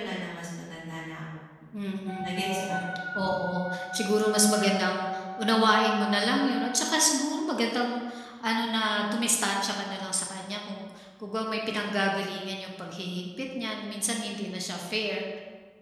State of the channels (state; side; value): identical; both; correlation 1.00